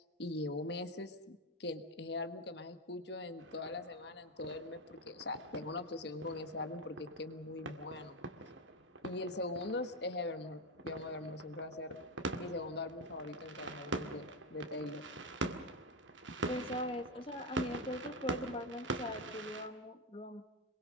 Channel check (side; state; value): both; normal; correlation 0.12